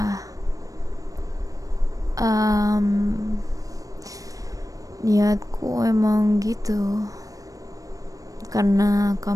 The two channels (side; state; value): left; late; 0.16 ms